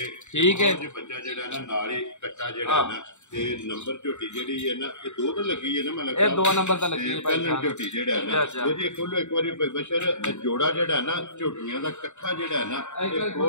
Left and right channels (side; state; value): right; late; 0.84 ms